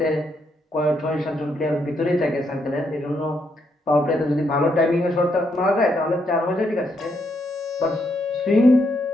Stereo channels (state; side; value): normal; both; correlation 0.77